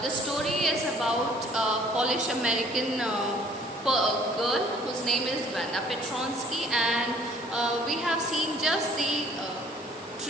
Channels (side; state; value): both; normal; correlation 0.56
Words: the story is about a Polish American girl whose name is Wanda Petronsky, and we have seen just the